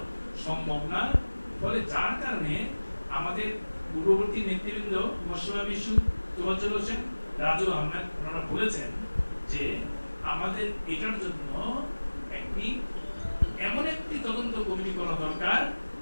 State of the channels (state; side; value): inverted; both; correlation -1.00